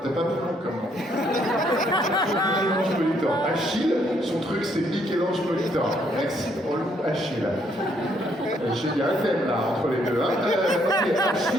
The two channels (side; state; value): both; normal; correlation 0.70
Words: T'as pas plus long comme moi. Michel-Ange Molitor. Achille, son truc c'est Michel-Ange Molitor. Merci, relou Achille. Il y a un thème là entre les deux. Hein. Ok,